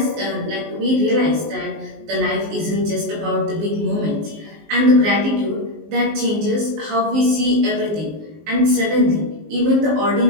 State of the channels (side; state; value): left; late; 19 ms